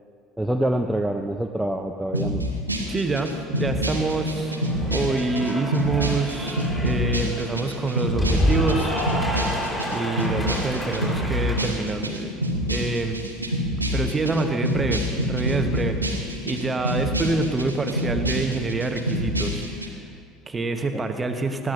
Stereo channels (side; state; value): both; normal; correlation 0.41